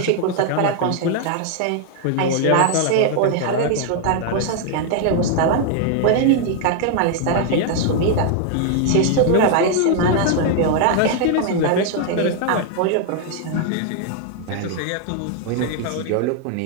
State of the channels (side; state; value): both; different; correlation 0.00